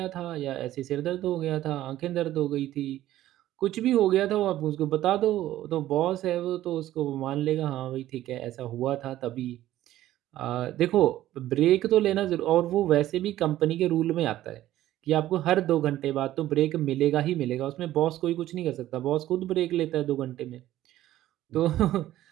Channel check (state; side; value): quieter; left; 14.0 dB